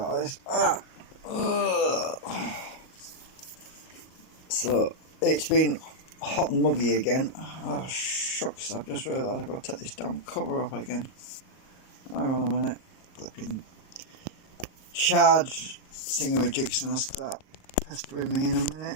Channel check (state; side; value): late; right; 38 ms